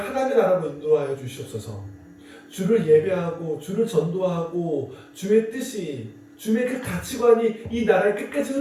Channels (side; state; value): both; identical; correlation 1.00